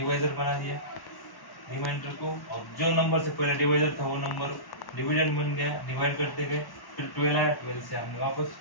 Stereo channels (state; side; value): late; right; 1.1 ms